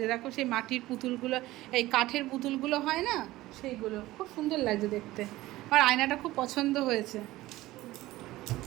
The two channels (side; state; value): left; quieter; 17.3 dB